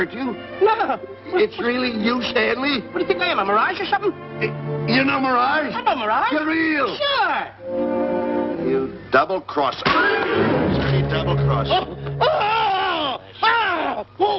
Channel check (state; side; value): identical; both; correlation 1.00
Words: you? No. It's really you, Stanley? What do you think I am, a mirage or something? You know Mirage? I know mirage. You're real. Sure. You double-crosser. You double-crosser. Oh!